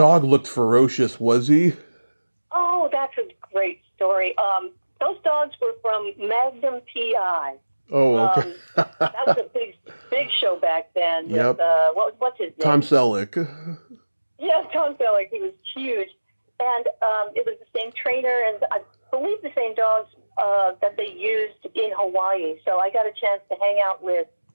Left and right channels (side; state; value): both; inverted; correlation -1.00